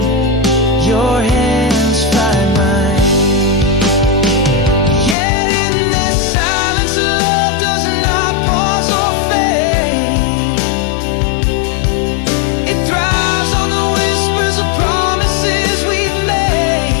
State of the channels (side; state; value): right; drops out; at 5.2 s